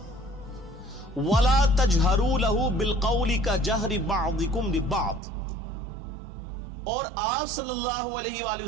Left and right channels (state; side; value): drops out; left; at 5.2 s